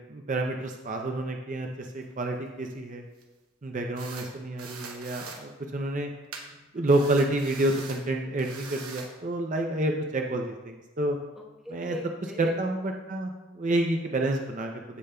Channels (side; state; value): both; normal; correlation 0.58